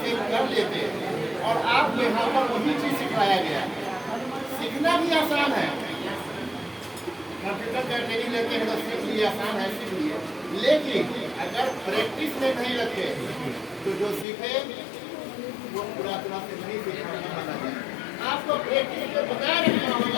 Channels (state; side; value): drops out; right; at 14.2 s